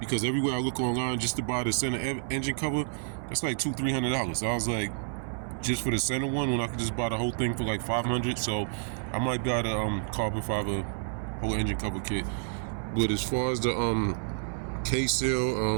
because everywhere I look online just to buy the center engine cover, that's like $200-300. So I was like, just for the center one, when I could just buy the whole thing for like $500. So I might buy the carbon fiber whole engine cover kit. But as far as the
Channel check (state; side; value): silent; left; 58 dB below the other